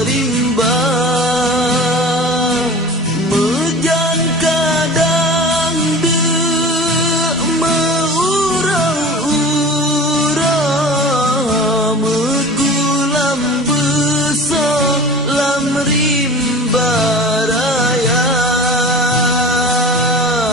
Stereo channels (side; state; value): both; normal; correlation 0.37